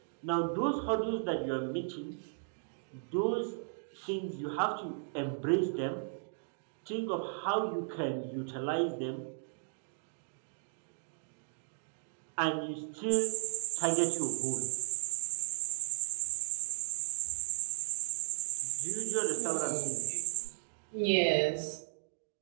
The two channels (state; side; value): silent; left; digital silence